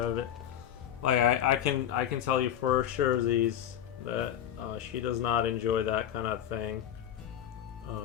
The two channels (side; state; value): right; quieter; 10.3 dB